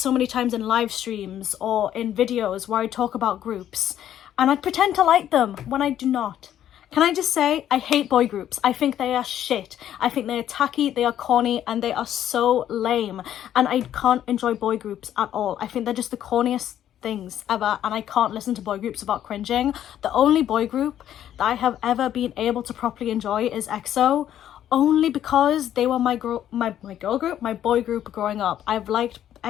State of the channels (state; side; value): quieter; right; 11.0 dB